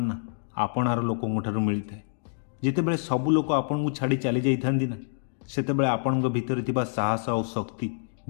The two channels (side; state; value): right; silent; digital silence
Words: ନା ଆପଣାର ଲୋକଙ୍କ ଠାରୁ ମିଳିଥାଏ। ଯେତେବେଳେ ସବୁ ଲୋକ ଆପଣଙ୍କୁ ଛାଡ଼ି ଚାଲି ଯାଇଥାନ୍ତି ନା, ସେତେବେଳେ ଆପଣଙ୍କ ଭିତରେ ଥିବା ସାହସ ଆଉ ଶକ୍ତି